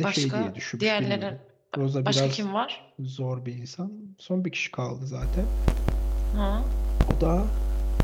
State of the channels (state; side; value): identical; both; correlation 1.00